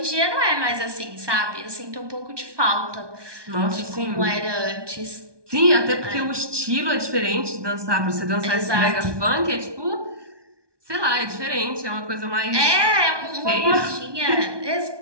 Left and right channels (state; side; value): late; left; 1.2 ms